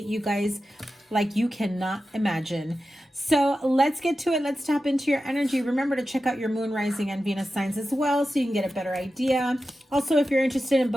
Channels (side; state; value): both; normal; correlation 0.92